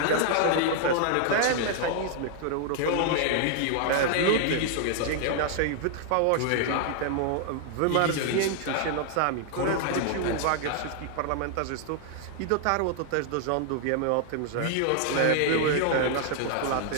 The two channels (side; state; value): both; different; correlation 0.00